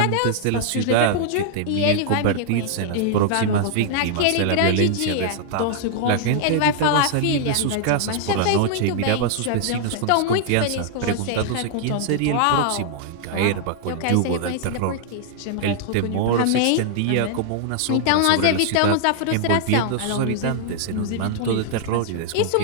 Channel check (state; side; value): different; both; correlation -0.01